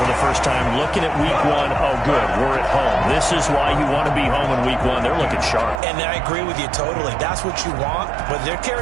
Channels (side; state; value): left; drops out; at 5.8 s